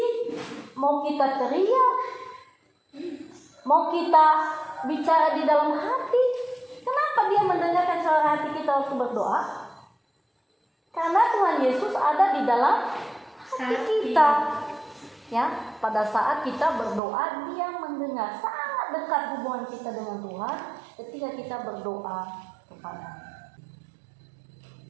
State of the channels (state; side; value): drops out; left; at 17.0 s